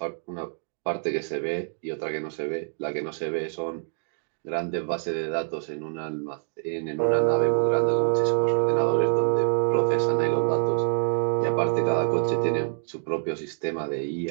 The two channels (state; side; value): silent; left; digital silence